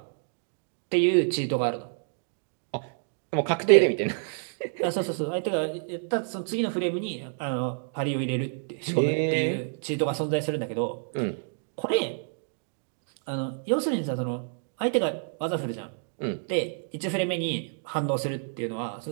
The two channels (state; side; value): silent; left; digital silence